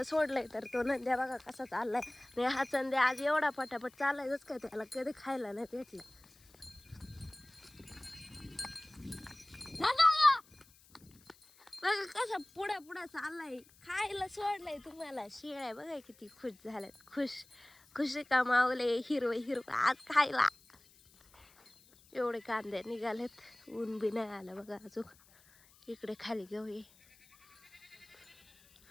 सोडलंय तर तो नंद्या बघा कसा चाललाय. आणि हा चंद्या आज एवढा पटापट चाललायच काय, त्याला कधी खायला नाही भेटलं. बघा कसा पुढे पुढे चाललाय, खायला सोडलंय तुम्हाला. शेळ्या बघा किती खुश झाल्यात, खुशी कमावले. हिरवं हिरवं आज खायला. एवढे कांदे निघालेत, ऊन बी नाही आलं बघा अजून. इकडे खाली घेऊया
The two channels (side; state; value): left; noise; hiss, 27 dB below the sound